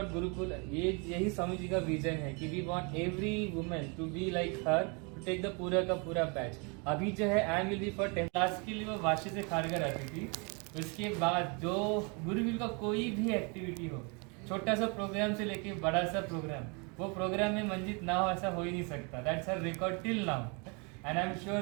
गुरुकुल, यही स्वामी जी का विजन है कि we want every women to be like her, to take the पूरा का पूरा बैच। अभी जो है I will be for 10 class के लिए वो वाशी से खारगर आती थी। उसके बाद जो गुरुकुल का कोई भी एक्टिविटी हो, छोटा सा प्रोग्राम से लेके बड़ा सा प्रोग्राम, वो प्रोग्राम में मंजित ना हो ऐसा हो ही नहीं सकता। That's her record till now and I am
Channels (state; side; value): quieter; left; 32.9 dB